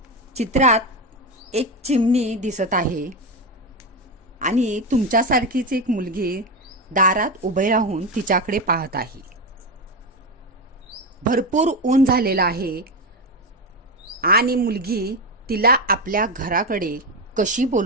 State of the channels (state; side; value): normal; both; correlation 0.15